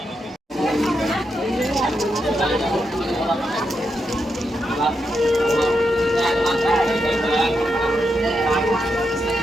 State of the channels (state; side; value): normal; both; correlation 0.84